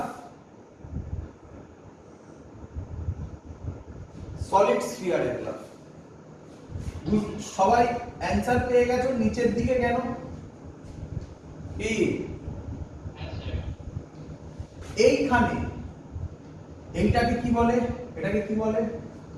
সলিড স্ফিয়ারের গ্রাফ। সবাই অ্যানসার পেয়ে গেছো? নিচের দিকে কেন? কি এইখানে এইটাকে কি বলে? এটাকে কি বলে?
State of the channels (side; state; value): both; identical; correlation 1.00